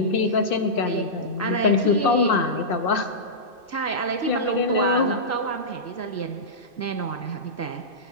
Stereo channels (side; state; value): right; late; 2.6 ms